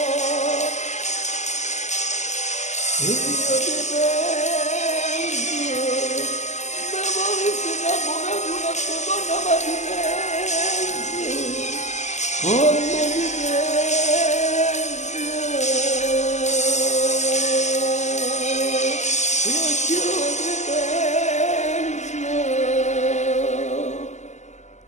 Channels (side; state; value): right; late; 0.34 ms